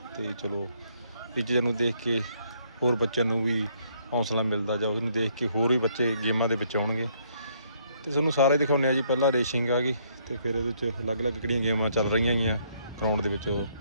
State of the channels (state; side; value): inverted; both; correlation -0.69